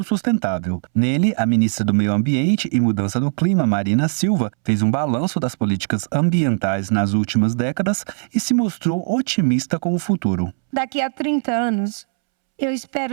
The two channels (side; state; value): left; silent; 66 dB below the other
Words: sustentável. Nele, a ministra do Meio Ambiente e Mudança do Clima, Marina Silva, fez um balanço das políticas ambientais nas últimas décadas e se mostrou otimista com o futuro. Daqui a 30 anos, eu